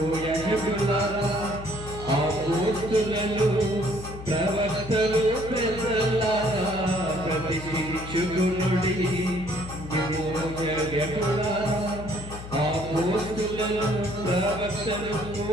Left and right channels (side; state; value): left; noise; hum, 12 dB below the sound